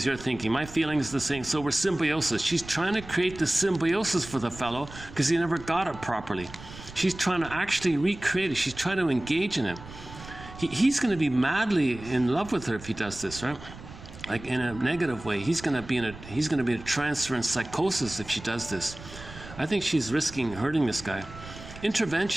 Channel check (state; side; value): noise; right; rumble, 15 dB below the sound